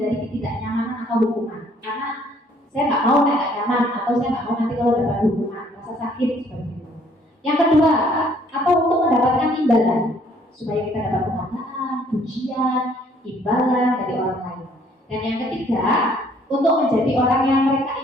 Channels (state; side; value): normal; both; correlation 0.62